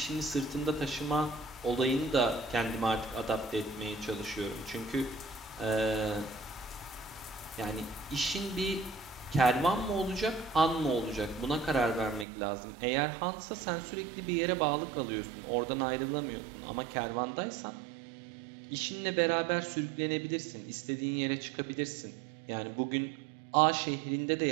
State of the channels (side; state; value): left; drops out; at 12.2 s